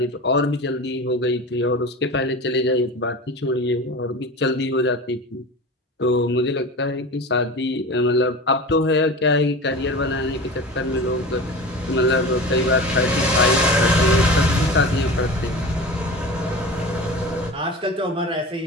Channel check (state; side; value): normal; both; correlation 0.33